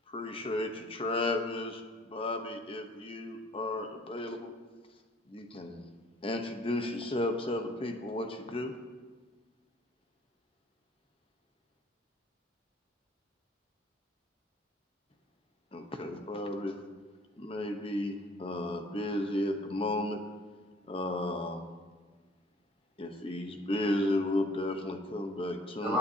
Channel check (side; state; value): both; normal; correlation 0.56